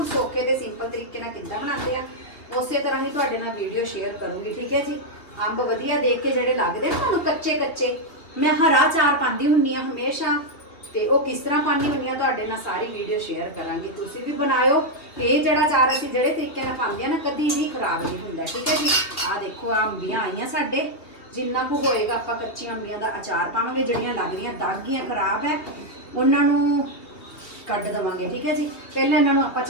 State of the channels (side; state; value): right; late; 3.0 ms